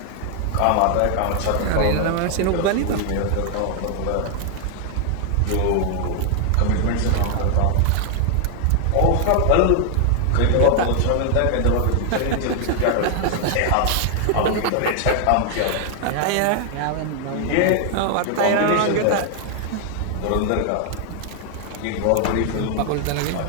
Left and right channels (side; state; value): both; different; correlation 0.00